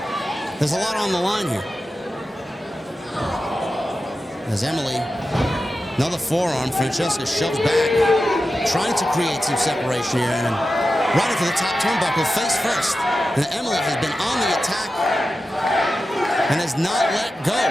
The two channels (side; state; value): both; normal; correlation 0.92